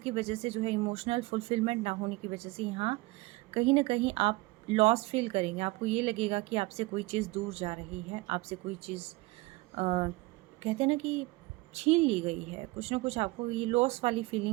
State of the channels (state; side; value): quieter; left; 22.1 dB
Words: वजह से जो है इमोशनल फुलफिलमेंट ना होने की वजह से यहाँ कहीं ना कहीं आप लॉस फील करेंगे। आपको ये लगेगा कि आपसे कोई चीज़ दूर जा रही है, आपसे कोई चीज़ कहते हैं ना कि छीन ली गई है, कुछ ना कुछ आपको ये लॉस वाली